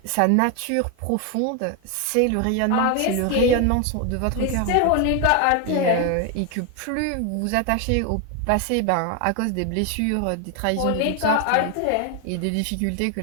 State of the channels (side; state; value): both; different; correlation 0.01